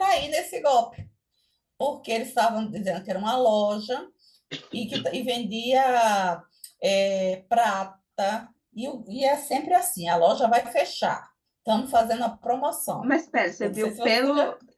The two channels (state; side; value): identical; both; correlation 1.00